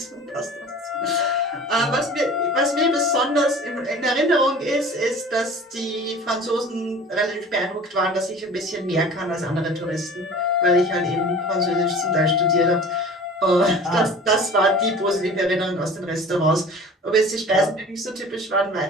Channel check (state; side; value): normal; both; correlation 0.42